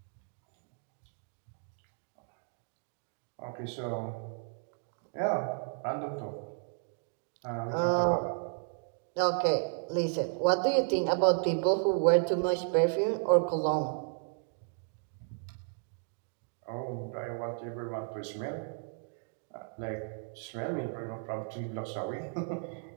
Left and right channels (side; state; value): left; silent; 55 dB below the other